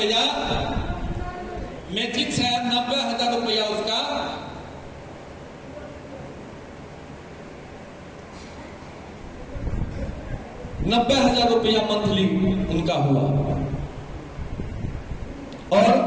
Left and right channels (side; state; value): both; identical; correlation 1.00